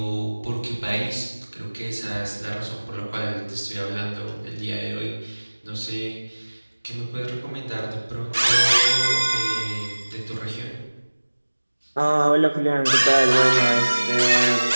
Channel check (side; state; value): both; inverted; correlation -1.00